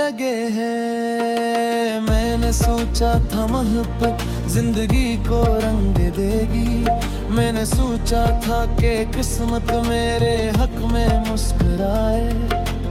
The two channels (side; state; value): both; identical; correlation 1.00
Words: हैं। मैंने सोचा था मोहब्बत जिंदगी को रंग देगी। मैंने सोचा था कि किस्मत मेरे हक में मुस्कुराए,